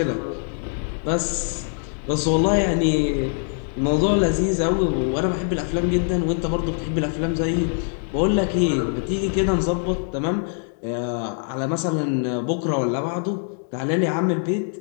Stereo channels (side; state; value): right; silent; 58 dB below the other